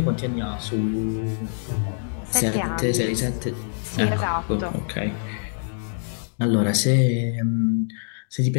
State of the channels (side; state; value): right; silent; digital silence